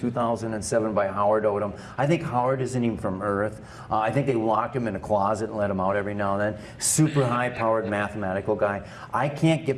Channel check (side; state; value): both; identical; correlation 1.00